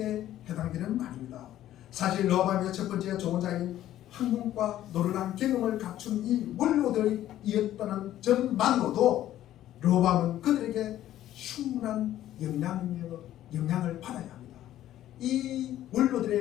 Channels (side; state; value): right; quieter; 12.9 dB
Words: 해당되는 말입니다. 사실 르호보암의 첫 번째 조언자인 학문과 노련한 경험을 갖춘 이 원로들이었다는 점만으로도 르호보암은 그들에게 충분한 영향을 받아야 합니다. 이